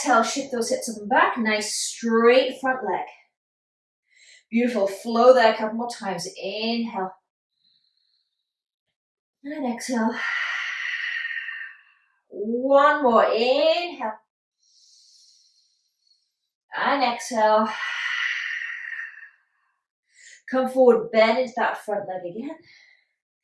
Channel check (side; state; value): both; identical; correlation 1.00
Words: shift those hips up and back. Nice straight front leg. Beautiful. Flow there a couple more times. Inhale. And exhale. One more. Inhale. And exhale. Come forward, bend into that front leg again.